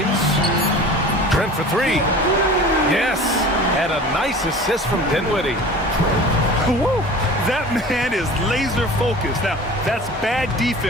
Trent for 3. Yes. And a nice assist from Dinwiddie. Woo! That man is laser focused. Now, that's bad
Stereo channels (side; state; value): both; normal; correlation 0.40